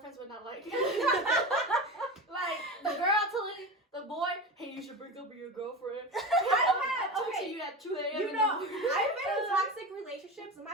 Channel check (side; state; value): both; normal; correlation 0.25